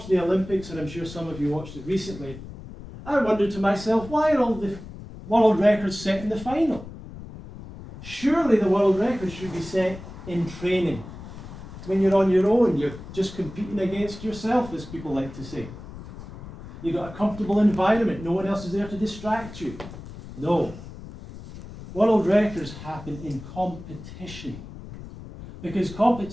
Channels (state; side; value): noise; left; rumble, 14 dB below the sound